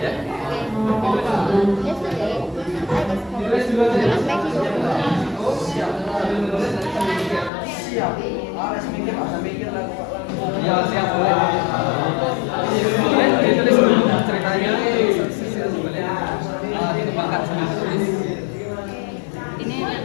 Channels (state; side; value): drops out; right; at 7.5 s